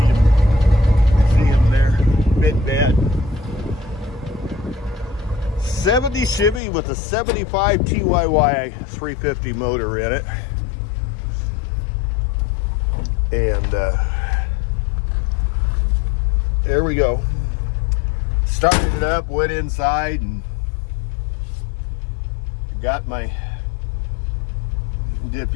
See him there, bit bad. 70 Chevy with a 75 TYY 350 motor in it. And there we go. Started it up, went inside, and did a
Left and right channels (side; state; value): right; drops out; at 6.6 s